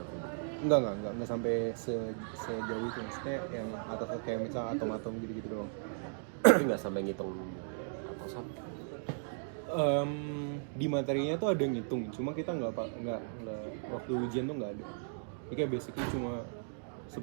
enggak sampai sejauh itu, maksudnya yang atas kayak misalnya atom-atom gitu-gitu doang. Tapi nggak sampai ngitung atau sama. Di materinya tuh ada ngitung, cuma kita nggak waktu ujian tuh nggak ada. Jadi kayak basically cuma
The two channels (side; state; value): left; silent; digital silence